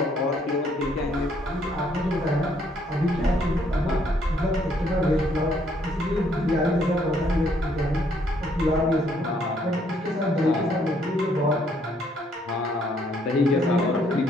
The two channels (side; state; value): both; normal; correlation 0.68